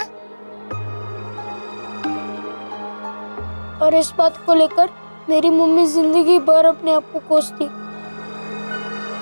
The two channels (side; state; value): both; inverted; correlation -1.00